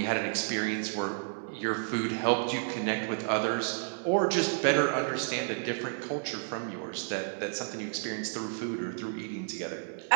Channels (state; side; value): silent; left; digital silence